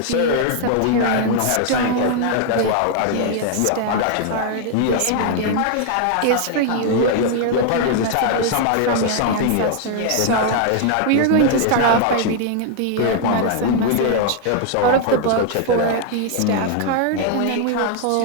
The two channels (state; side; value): different; both; correlation 0.00